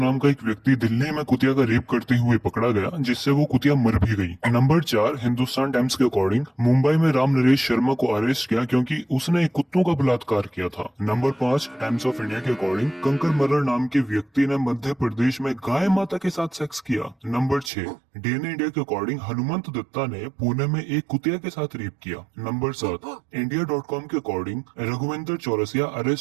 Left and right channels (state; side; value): drops out; left; at 17.7 s